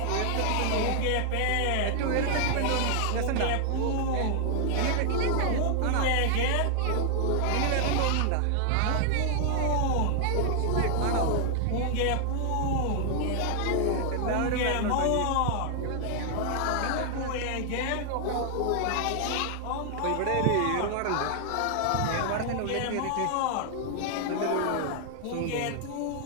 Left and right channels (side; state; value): both; different; correlation 0.00